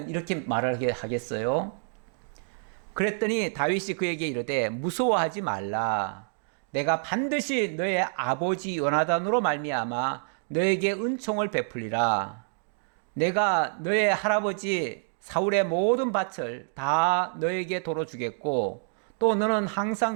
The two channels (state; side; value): silent; left; digital silence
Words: 이렇게 말을 하겠어요? 그랬더니 다윗이 그에게 이르되 무서워하지 말라. 내가 반드시 너의 아버지 요나단으로 말미암아 너에게 은총을 베풀리라. 내가 너의 할아버지 사울의 모든 밭을 다 너에게 도로 주겠고 또 너는